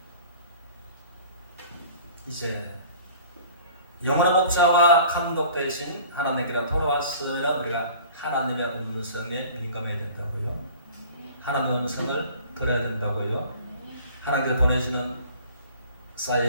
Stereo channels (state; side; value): inverted; both; correlation -0.47